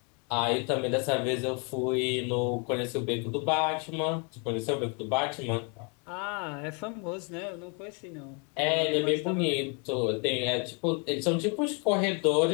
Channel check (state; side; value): quieter; right; 35.6 dB